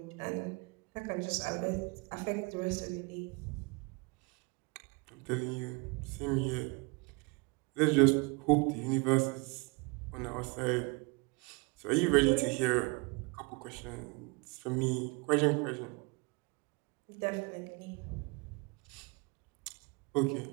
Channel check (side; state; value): left; quieter; 29.7 dB